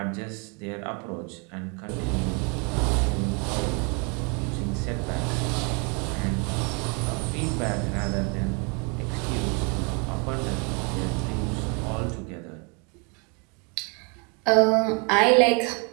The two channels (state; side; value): quieter; left; 33.7 dB